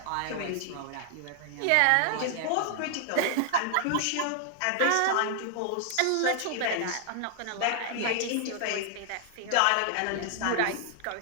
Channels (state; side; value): different; both; correlation 0.00